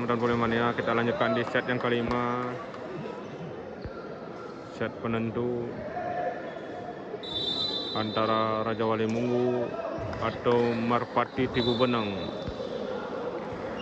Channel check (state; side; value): identical; both; correlation 1.00